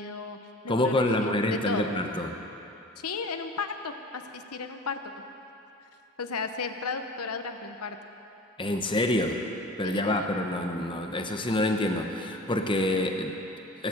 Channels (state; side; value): normal; both; correlation 0.40